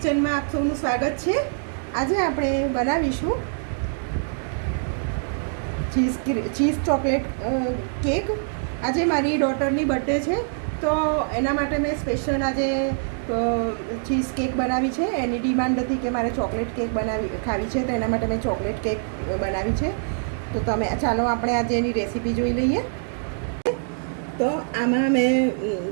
આપ સૌનું સ્વાગત છે. આજે આપણે બનાવીશું ચીઝ ચોકલેટ કેક. આજે મારી ડોટરની બર્થડે છે, તો એના માટે મેં સ્પેશિયલ આજે ચીઝ કેક બનાવી છે. એની ડિમાન્ડ હતી કે મારે ચોકલેટ કેક ખાવી છે, તો એના માટે મેં ચોકલેટ કેક બનાવી છે. તો ચાલો આપણે આજે એની રેસીપી જોઈ લઈએ. તો આમાં મેં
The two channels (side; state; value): left; silent; digital silence